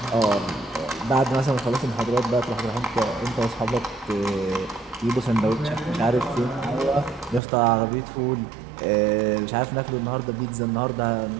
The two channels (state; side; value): drops out; left; at 7.4 s